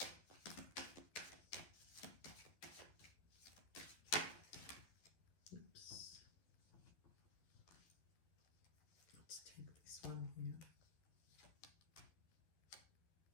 Oops. Let's take this one here.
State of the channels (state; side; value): late; right; 12 ms